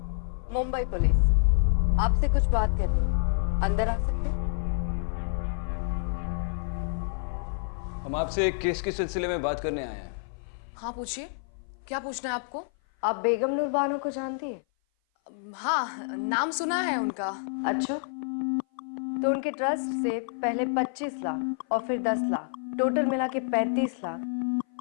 मुंबई पुलिस, आपसे कुछ बात करनी है, अंदर आ सकते हैं? हम आपसे एक केस के सिलसिले में बात करने आए हैं। हाँ पूछिए, क्या पूछना है आपको? आप बेगम नूर बानो को जानती है? हाँ, नाम सुना है उनका। अच्छा, तो उनके ट्रस्ट से पहले 25 लाख और फिर 10 लाख, टोटल मिला के 35 लाख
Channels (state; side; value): silent; right; 56 dB below the other